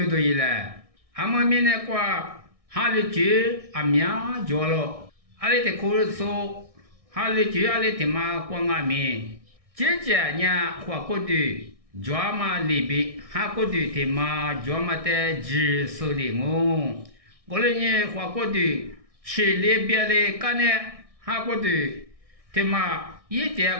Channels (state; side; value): late; left; 1.6 ms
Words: 都一来，俺们明年瓜。哈里句阿苗叫了，阿里的口说，哈里句阿里的嘛光阿面，姐姐呢花过的，叫嘛里边哈过的的嘛叫嘛的只手里我，我嘞呢花过的，吃里边的干呢哈过的，的嘛一